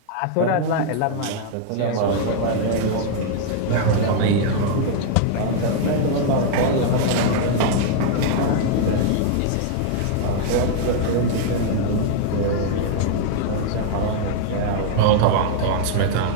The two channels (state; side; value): different; both; correlation 0.00